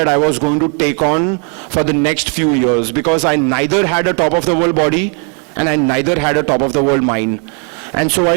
I was going to take on for the next few years, because I neither had a top of the world body and I neither had a top of the world mind. And so I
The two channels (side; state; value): left; quieter; 39.5 dB